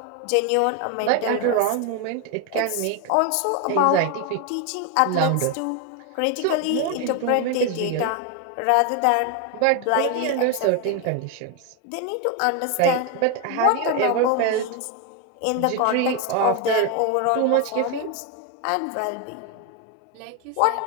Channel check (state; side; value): different; both; correlation 0.01